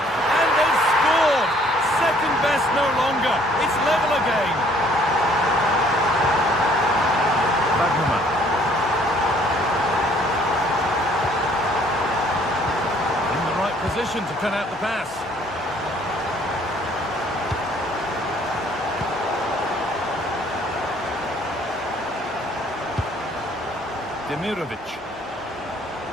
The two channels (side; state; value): both; normal; correlation 0.60